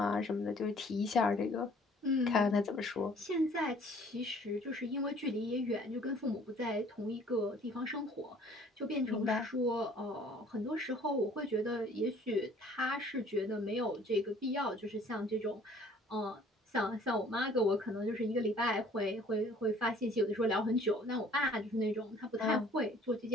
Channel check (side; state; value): both; normal; correlation 0.55